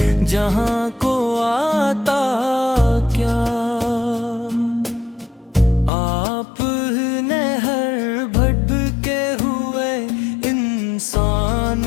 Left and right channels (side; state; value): right; drops out; at 5.9 s